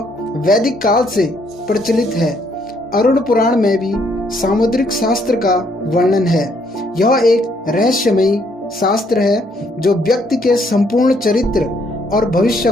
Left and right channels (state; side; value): normal; both; correlation 0.69